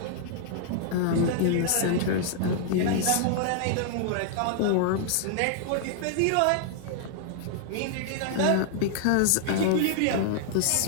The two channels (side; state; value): both; different; correlation -0.01